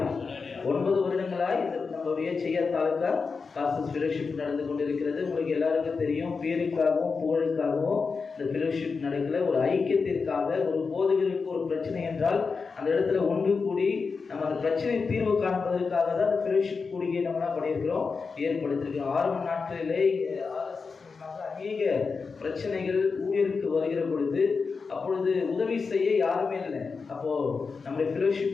9 வருடங்களாய் நம்மளுடைய செய்யத்தாலுக்கா பாஸ்டர்ஸ் ஃபெலோஷிப் நடந்து கொண்டிருக்கிறது. உங்களுக்கு எல்லாருக்கும் தெரியும், பேருக்காகவும் புகழுக்காகவும் இந்த ஃபெலோஷிப் நடக்கல. ஒரு ஐக்கியத்திற்காக, ஒரு போதகருக்கு ஒரு பிரச்சனை என்றால் அந்த இடத்துல ஒன்று கூடி நம்ம அந்த பிரச்சனை தீர்வு காண்பதற்காக தான் அந்த ஃபெலோஷிப் கூடிய நம்ம என்ன பண்ணியிருக்கிறோம், ஏற்படுத்தியிருக்கிறோம். ஆரம்ப நாட்களிலே அநேக பிரச்சனைகள் ஊழியருக்கு வருகிற பொழுது அப்பொழுது உதவி செய்ய யாருமே இல்லை. அப்போது நம்முடைய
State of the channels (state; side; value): quieter; right; 4.9 dB